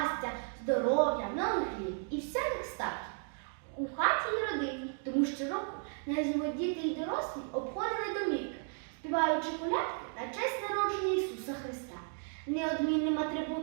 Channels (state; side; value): silent; left; 55 dB below the other